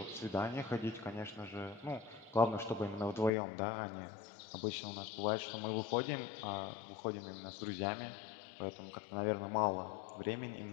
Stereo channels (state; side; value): drops out; right; at 3.3 s